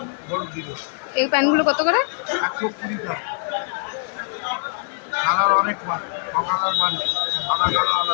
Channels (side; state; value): right; silent; digital silence